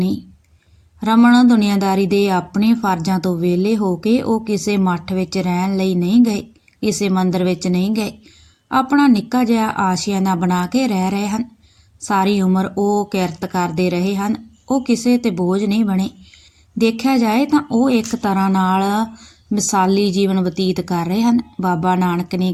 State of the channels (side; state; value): both; identical; correlation 1.00